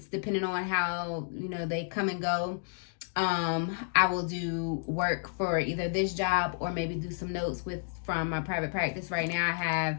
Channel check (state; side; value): silent; right; digital silence